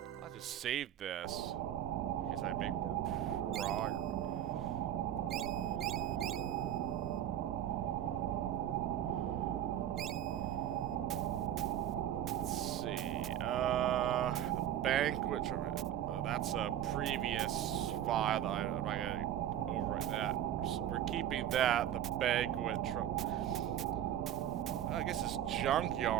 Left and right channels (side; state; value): left; quieter; 11.2 dB